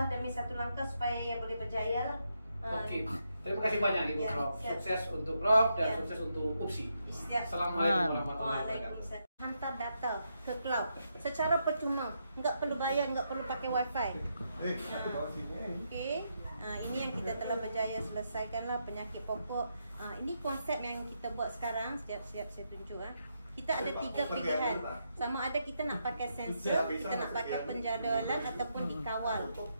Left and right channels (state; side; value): inverted; both; correlation -0.81